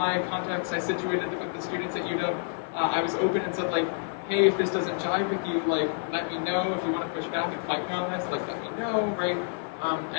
contacts, I situated with the students at UW. I was open and said like, hey, if this doesn't jive with you, like, let me know. If you want to push back and fight me on this, like, let me know, right? And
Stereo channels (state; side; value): silent; right; 59 dB below the other